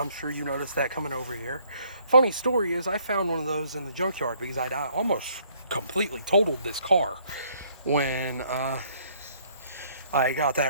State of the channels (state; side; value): inverted; both; correlation -0.64